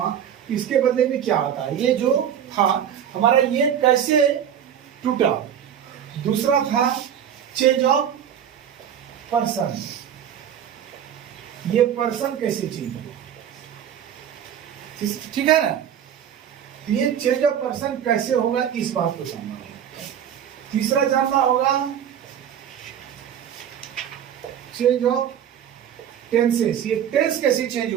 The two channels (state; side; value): quieter; left; 9.2 dB